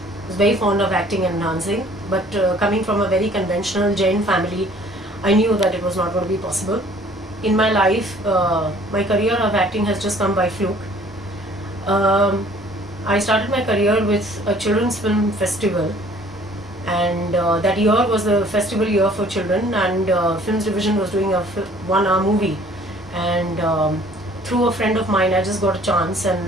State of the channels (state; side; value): normal; both; correlation 0.55